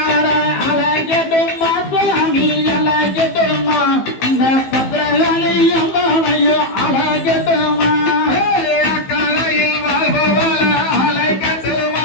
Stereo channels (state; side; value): late; right; 15 ms